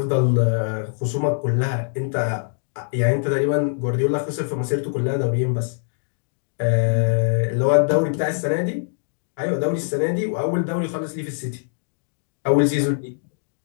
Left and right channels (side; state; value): right; silent; digital silence